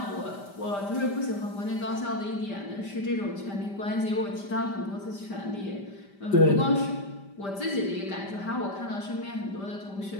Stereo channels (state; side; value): late; right; 5.1 ms